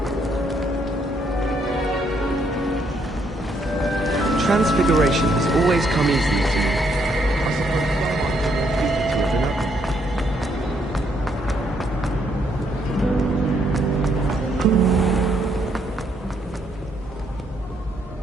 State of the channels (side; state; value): both; normal; correlation 0.72